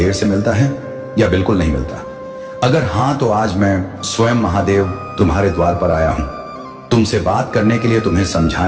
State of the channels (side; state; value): both; identical; correlation 1.00